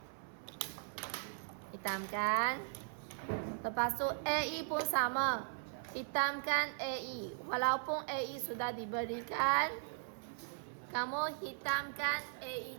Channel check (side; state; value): left; silent; 52 dB below the other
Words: Hitamkan. Lepas tu AE pun sama. Hitamkan AE. Walaupun AE sudah diberikan, kamu hitamkan